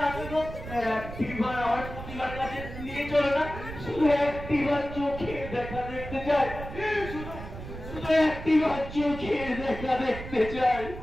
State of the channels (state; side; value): noise; right; rumble, 10 dB below the sound